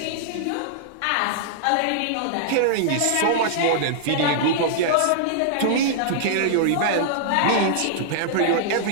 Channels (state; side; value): different; both; correlation -0.01